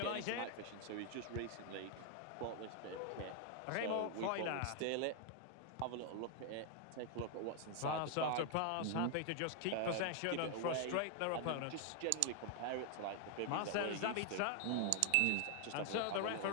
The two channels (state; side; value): different; both; correlation 0.00